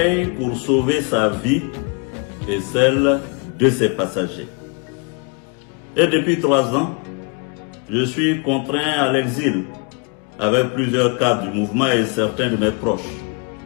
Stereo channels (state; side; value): quieter; right; 34.5 dB